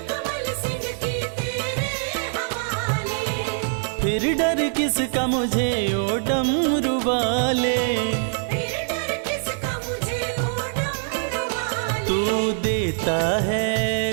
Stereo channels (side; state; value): left; silent; digital silence